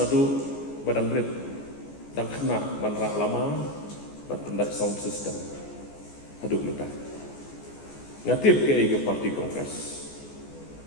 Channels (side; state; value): right; late; 14 ms